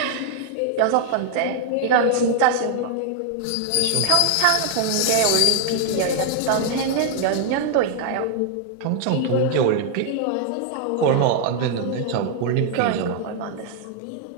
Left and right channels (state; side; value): different; both; correlation 0.00